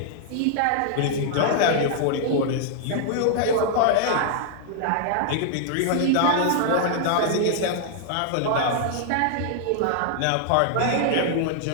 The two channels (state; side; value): different; both; correlation -0.01